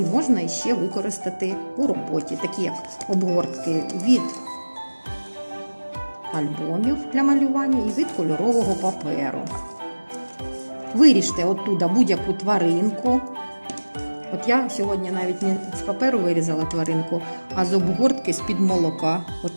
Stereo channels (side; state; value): both; inverted; correlation -1.00